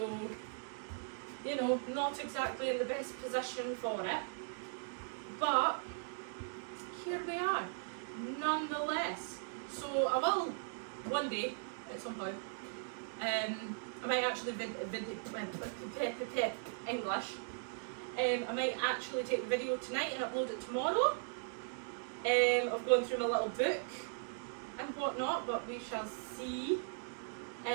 you know, not exactly in the best position for it. But here we are, nonetheless. So I will, one day, at some point, I might actually English. I might actually take the video tonight and upload it tomorrow. Of going through my little book and whatnot, but we shall see.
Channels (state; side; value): silent; left; digital silence